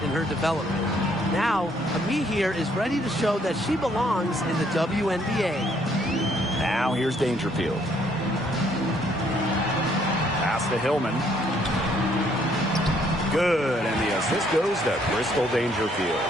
in her development. Now, Ami here is ready to show that she belongs in the WNBA. Now here's Dangerfield. Pass to Hillman. Good, and the assist goes to Crystal Dangerfield.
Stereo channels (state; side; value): normal; both; correlation 0.67